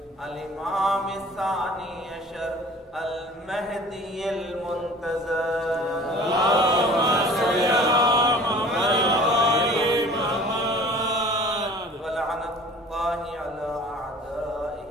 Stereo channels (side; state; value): both; normal; correlation 0.46